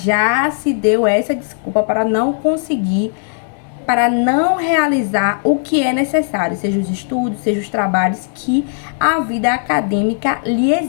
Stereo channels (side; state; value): right; silent; digital silence